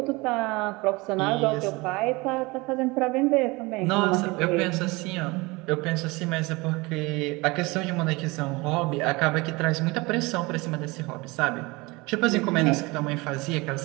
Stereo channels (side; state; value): left; quieter; 23.9 dB